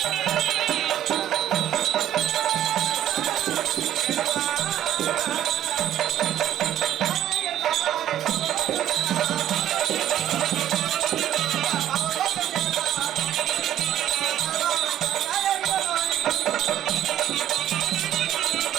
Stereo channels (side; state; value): left; quieter; 11.6 dB